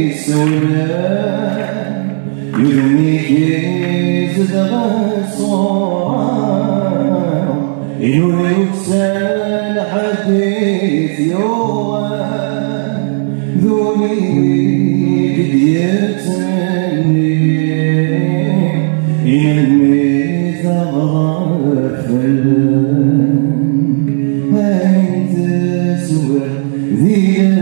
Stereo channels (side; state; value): left; silent; digital silence